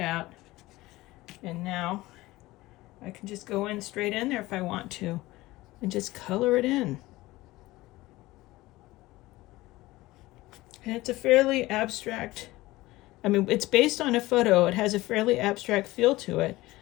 And now I can just go in straight in there if I want to and just color it in. And it's a fairly abstract, I mean, it's based on a photo. It has a fairly abstract feel to it,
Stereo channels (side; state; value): right; quieter; 18.7 dB